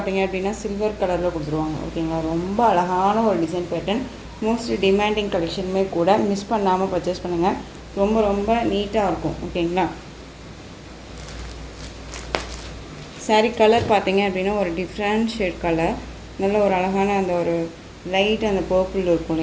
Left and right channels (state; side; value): identical; both; correlation 1.00